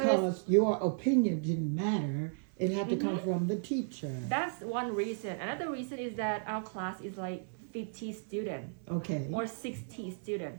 your opinion didn't matter. It had to come from the teacher. That's one reason. Another reason is that our class is like 50 students. Okay. Or 60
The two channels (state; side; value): silent; left; 55 dB below the other